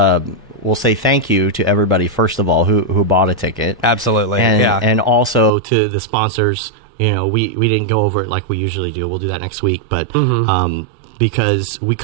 We'll say thank you to everybody first of all who bought a ticket. Absolutely, and also to the sponsors. We didn't go over it like we usually do. We'll do that next week, but because we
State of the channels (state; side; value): drops out; left; at 5.5 s